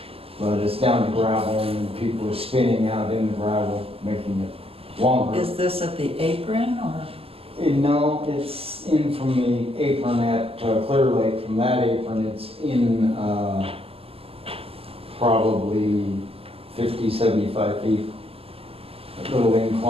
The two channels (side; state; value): left; late; 0.28 ms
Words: But it's down to gravel and people are spinning out in the gravel, making it longer. Is this at the apron or? No, it's in from the apron at Clear Lake. From that apron, it's in probably 50, 75 feet. A little